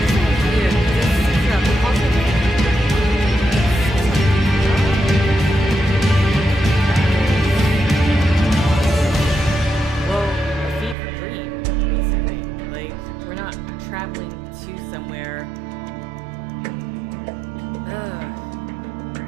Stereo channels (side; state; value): left; drops out; at 11.0 s